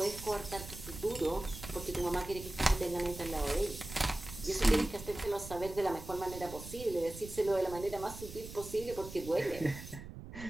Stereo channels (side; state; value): right; noise; rumble, 12 dB below the sound